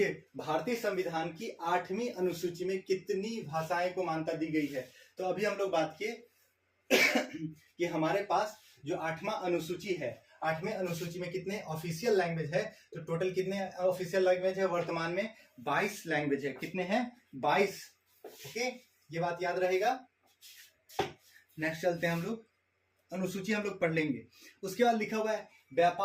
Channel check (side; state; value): both; identical; correlation 1.00